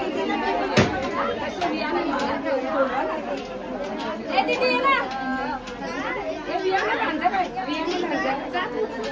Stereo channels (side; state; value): both; identical; correlation 1.00